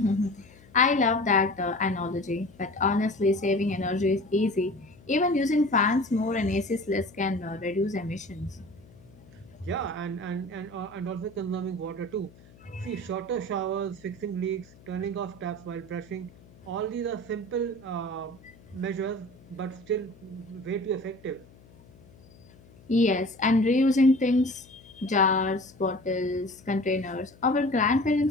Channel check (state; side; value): noise; left; hum, 24 dB below the sound